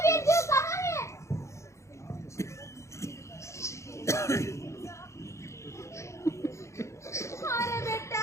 बिरजू, कहाँ है? अरे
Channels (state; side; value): late; right; 0.14 ms